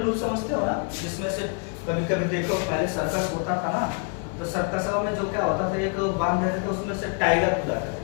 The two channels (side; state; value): right; quieter; 38.7 dB